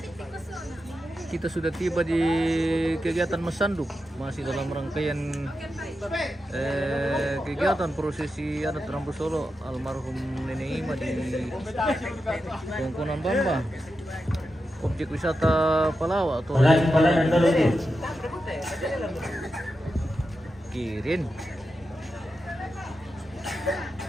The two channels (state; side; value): normal; both; correlation 0.89